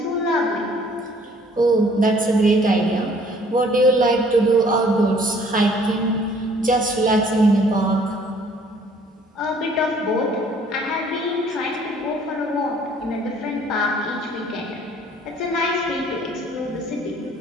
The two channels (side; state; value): both; normal; correlation 0.57